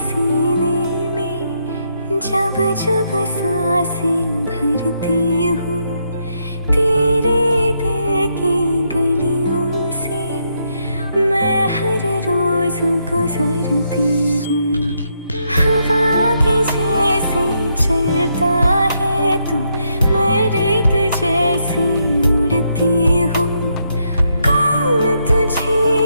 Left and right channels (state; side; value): inverted; both; correlation -0.78